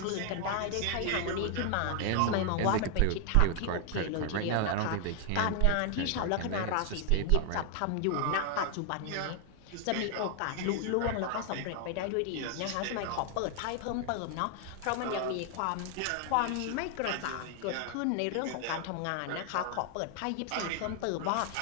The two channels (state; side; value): different; both; correlation 0.00